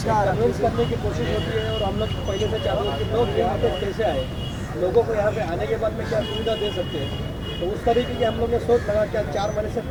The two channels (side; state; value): both; identical; correlation 1.00